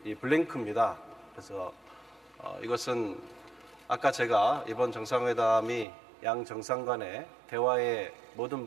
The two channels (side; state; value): left; drops out; at 5.9 s